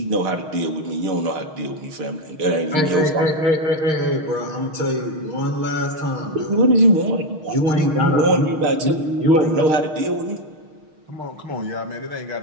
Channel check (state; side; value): late; left; 6.4 ms